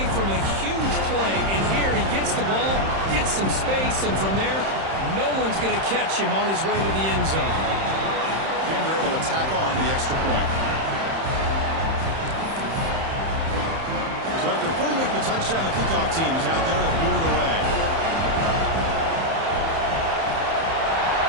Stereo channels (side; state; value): left; late; 31 ms